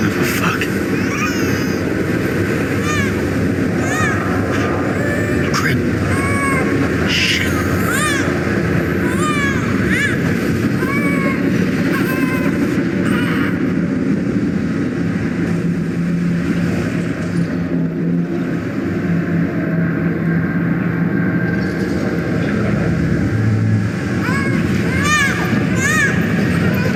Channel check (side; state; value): both; identical; correlation 1.00